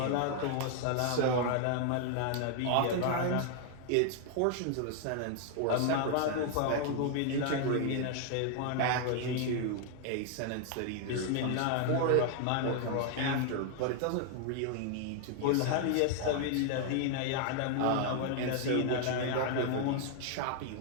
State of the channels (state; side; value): different; both; correlation 0.00